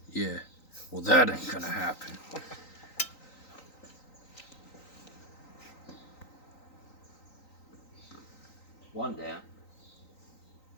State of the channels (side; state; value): right; late; 3.9 ms